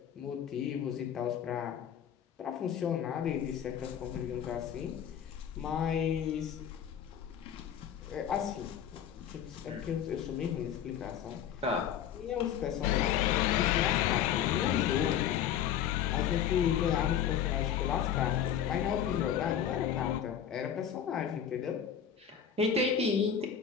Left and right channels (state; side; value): quieter; right; 9.1 dB